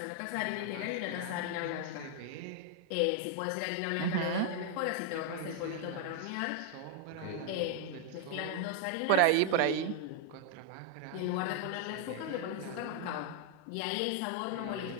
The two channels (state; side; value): different; both; correlation 0.00